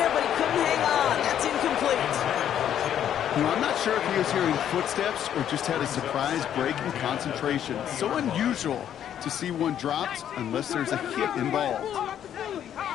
but he couldn't hang on. That's incomplete. You know, I'm not sure if he was hearing footsteps or just had a surprise break in concentration. So unusual to see one dropped unless there's a hit involved. On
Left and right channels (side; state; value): right; quieter; 10.0 dB